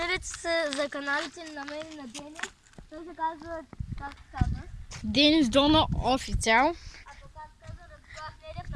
се за каналите на мен и на Денис. Той се казва, как се казва? Денис Дона официал. А то как се казва, Радослав Недев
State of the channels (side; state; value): both; identical; correlation 1.00